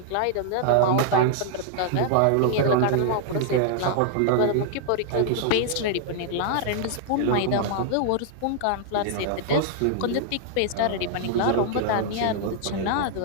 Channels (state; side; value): different; both; correlation -0.01